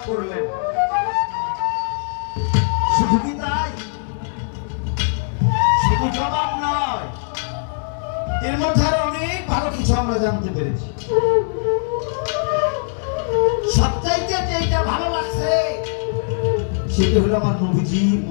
করলেন। শুধু কি তাই? শুধু জবাব নয়, এর মধ্যে আরো অনেক ভালো কিছু আমরা জানতে পেরেছি। সবচাইতে যেটা ভালো লাগছে সেটা হলো আমার নবীজির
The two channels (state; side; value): silent; right; digital silence